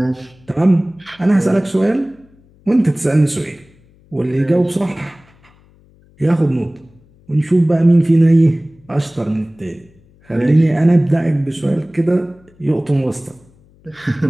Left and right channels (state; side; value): noise; left; hum, 30 dB below the sound